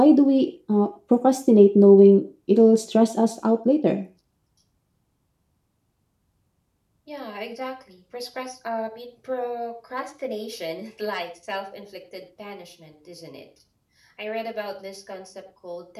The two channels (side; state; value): both; identical; correlation 1.00